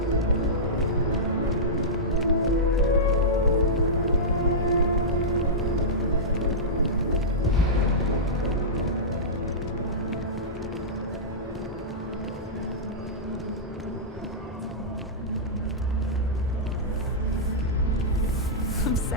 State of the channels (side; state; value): both; normal; correlation -0.14